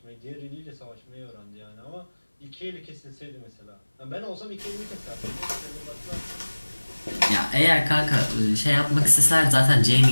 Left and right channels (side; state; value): both; inverted; correlation -1.00